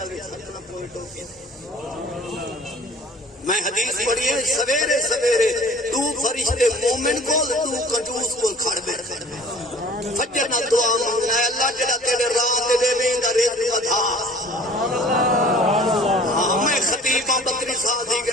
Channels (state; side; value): normal; both; correlation 0.48